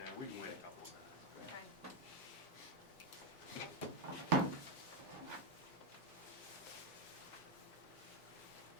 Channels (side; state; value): both; normal; correlation 0.05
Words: we can wait a couple of minutes. Okay.